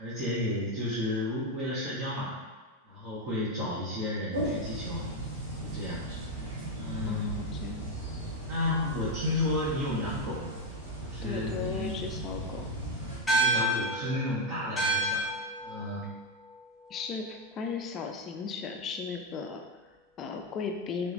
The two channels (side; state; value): both; normal; correlation 0.05